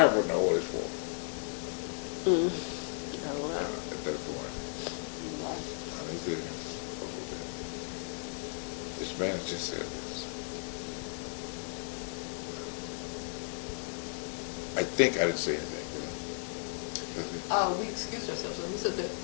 would know what it's for. At that point, I was there. What was that? This man has just said this. I think I didn't say anything, did I? That's it? We excused ourselves and we said that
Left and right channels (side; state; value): right; silent; 55 dB below the other